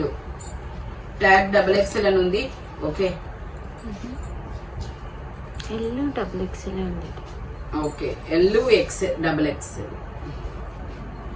tag XXL అని ఉంది. Okay, okay, LXXL.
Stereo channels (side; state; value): both; identical; correlation 1.00